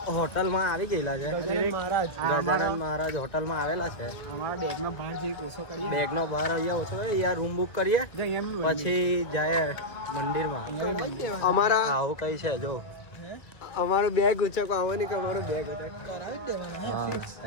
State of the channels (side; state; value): right; late; 1.9 ms